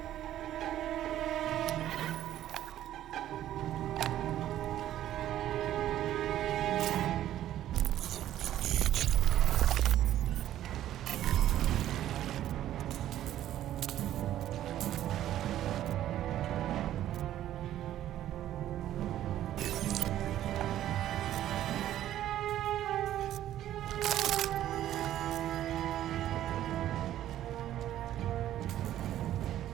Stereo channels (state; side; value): quieter; left; 12.4 dB